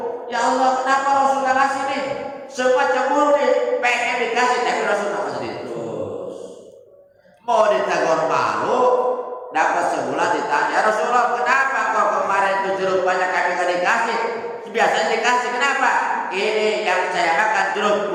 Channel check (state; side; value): identical; both; correlation 1.00